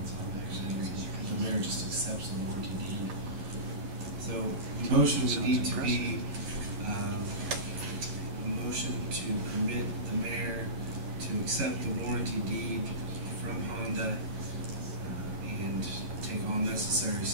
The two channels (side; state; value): left; late; 10 ms